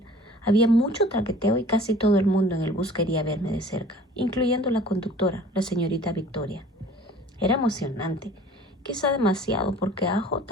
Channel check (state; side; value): normal; both; correlation 0.48